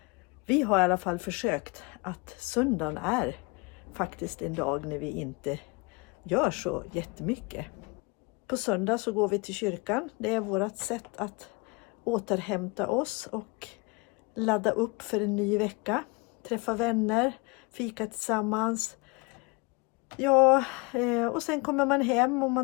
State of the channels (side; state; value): right; quieter; 28.5 dB